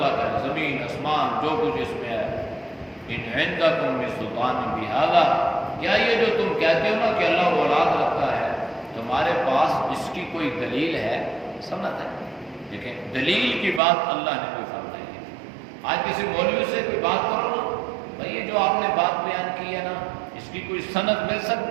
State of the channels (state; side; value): drops out; left; at 13.8 s